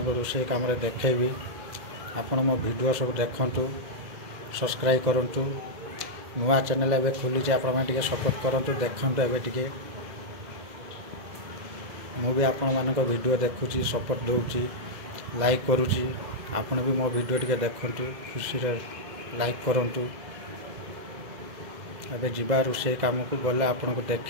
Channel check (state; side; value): late; left; 2.0 ms